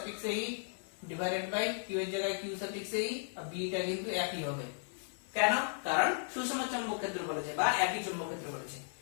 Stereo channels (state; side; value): silent; right; digital silence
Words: e divided by q এর জায়গায় q সাফিক্স e, আর b টা কিন্তু একই হবে। কেন? কারণ সুষম চৌম্বক ক্ষেত্র বলেছে বা একই চৌম্বক ক্ষেত্র বলেছে।